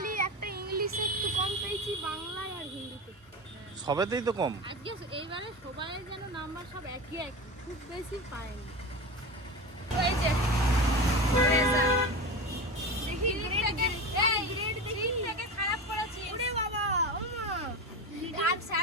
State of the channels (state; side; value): normal; both; correlation 0.25